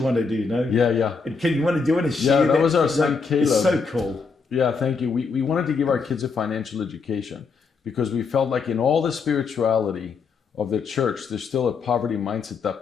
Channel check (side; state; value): right; quieter; 4.9 dB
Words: want to do, Yeah. and can you want to do it and share that was our son Caleb. It's so cool. Yeah, thank you. We wanted to give our kids a financial education because we felt like in all the spirituality of the church, there's still a poverty mindset